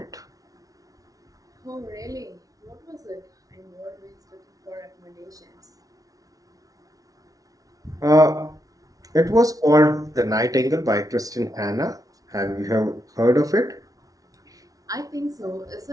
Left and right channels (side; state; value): left; late; 0.18 ms